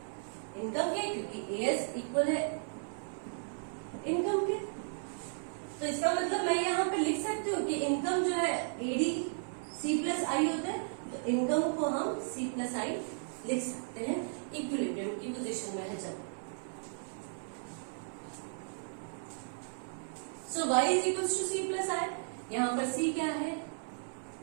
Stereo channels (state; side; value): silent; left; 54 dB below the other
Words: इनकम के, क्योंकि AS इक्वल है इनकम के। तो इसका मतलब मैं यहाँ पे लिख सकती हूँ कि इनकम जो है AD C प्लस I होता है, तो इनकम को हम C प्लस I लिख सकते हैं इक्विलिब्रियम की पोजीशन में है जब। So Y is equal to C plus I, यहाँ पर C क्या है,